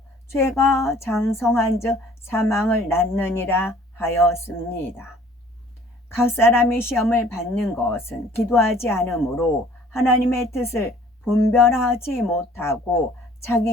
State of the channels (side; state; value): both; normal; correlation 0.54